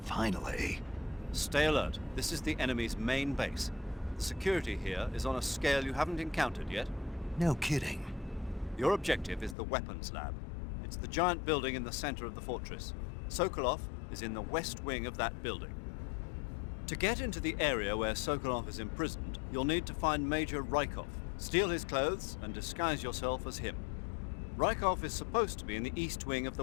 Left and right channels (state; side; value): drops out; right; at 9.6 s